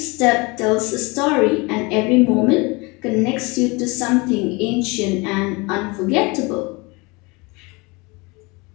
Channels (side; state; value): right; quieter; 26.6 dB